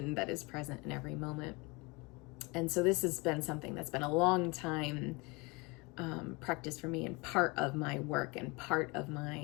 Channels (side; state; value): right; quieter; 26.6 dB